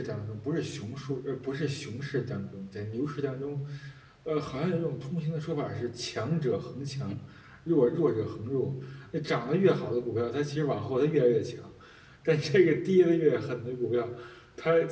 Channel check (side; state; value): both; identical; correlation 1.00